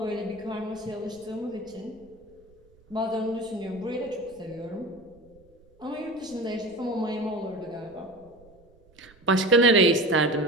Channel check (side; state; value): right; noise; rumble, 28 dB below the sound